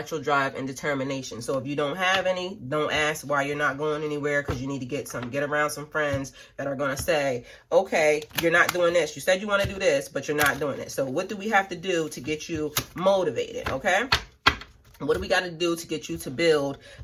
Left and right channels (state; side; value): identical; both; correlation 1.00